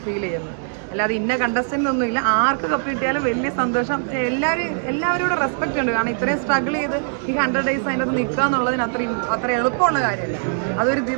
ഫീൽ ചെയ്യുന്നത്. അല്ലാതെ ഇന്ന കണ്ടസ്റ്റൻ്റ് ഒന്നുമില്ല. ആർക്ക് കപ്പ് കിട്ടിയാലും വലിയ സന്തോഷം. എല്ലാവരോടും റെസ്പെക്റ്റ് ഉണ്ട്. കാരണം ഇത്രയും സ്ട്രഗിൾ ചെയ്ത് ഈ 100 days അതിനകത്ത് നിൽക്കുക എന്നുള്ളതിന് അത്ര എളുപ്പമുള്ള കാര്യമല്ല. അതൊരു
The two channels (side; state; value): left; silent; digital silence